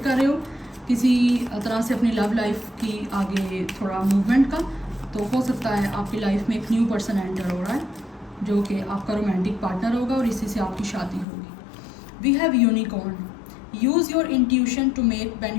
रहे हो किसी तरह से अपनी लव लाइफ की आगे थोड़ा मूवमेंट का, तो हो सकता है आपकी लाइफ में एक न्यू पर्सन एंटर हो रहा है जो कि आपका रोमांटिक पार्टनर होगा, और इसी से आपकी शादी होगी। We have unicorn, use your intuition to make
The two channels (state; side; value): drops out; right; at 11.2 s